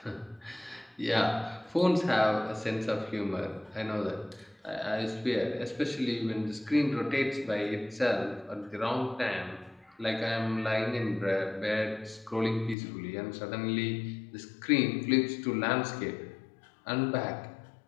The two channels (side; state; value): right; drops out; at 12.8 s